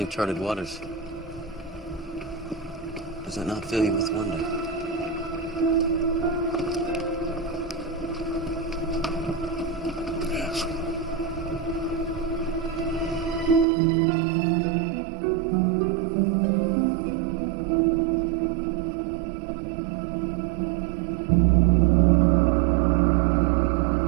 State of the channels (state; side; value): drops out; left; at 13.7 s